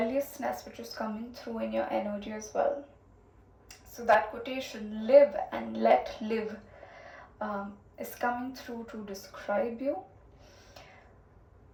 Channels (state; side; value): identical; both; correlation 1.00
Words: which is coming through in your energy as well. So that quotation, live and let live, is coming through to describe you.